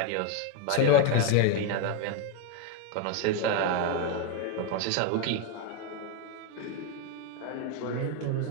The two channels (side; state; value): both; different; correlation 0.01